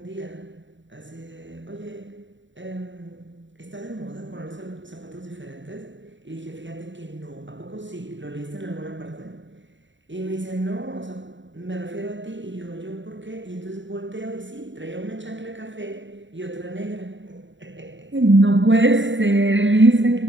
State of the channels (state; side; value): late; left; 0.54 ms